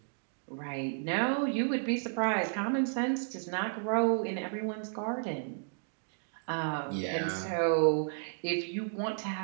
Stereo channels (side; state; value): left; silent; digital silence